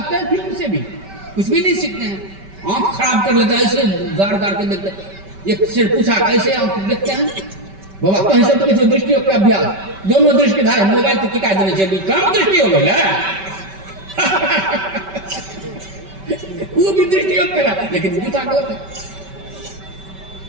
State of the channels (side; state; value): left; late; 5.2 ms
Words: हैं फिल्म से भी? कुछ भी नहीं सीखते हैं। आंख खराब कर लेता है, ऐसे गाड़ गाड़ के देखते हैं। एक से पूछा कैसे आप देखते हैं बाबा, कहीं से तो किसी दृष्टि का अभ्यास, दोनों दृष्टि धारा मोबाइल तो टिका देने चाहिए, कम दृष्टि हो गया वो भी दृष्टि करा, लेकिन पूछा गलत है।